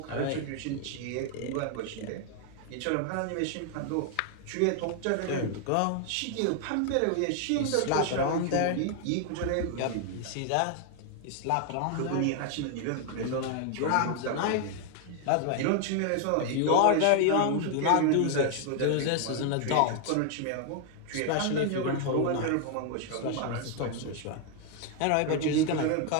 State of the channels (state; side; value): different; both; correlation 0.00